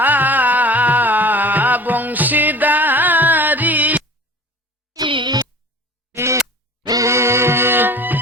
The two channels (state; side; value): normal; both; correlation 0.41